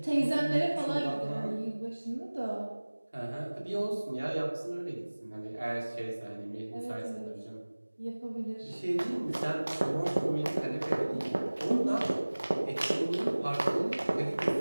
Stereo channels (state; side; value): inverted; both; correlation -1.00